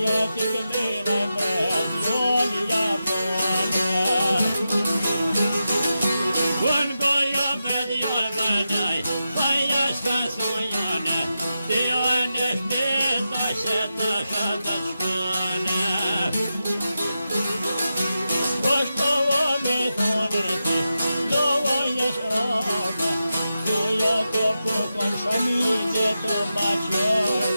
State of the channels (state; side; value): inverted; both; correlation -0.90